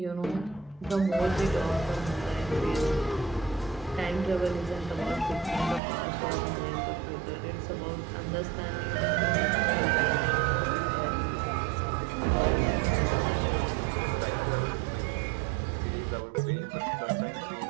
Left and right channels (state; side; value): drops out; left; at 5.8 s